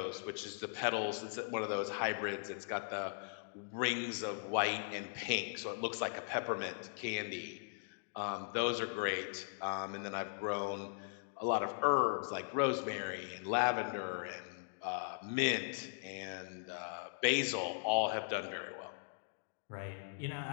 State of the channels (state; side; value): silent; right; digital silence